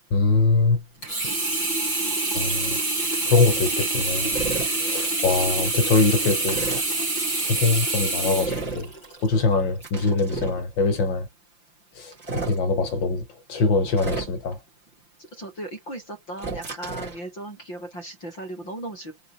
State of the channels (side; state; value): right; late; 5.8 ms